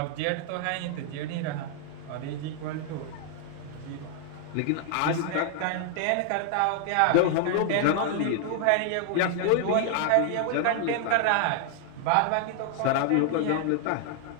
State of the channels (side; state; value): both; different; correlation 0.00